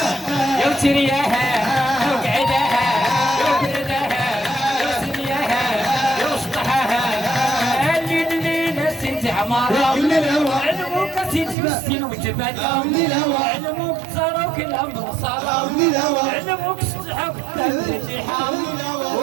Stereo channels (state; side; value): drops out; left; at 11.6 s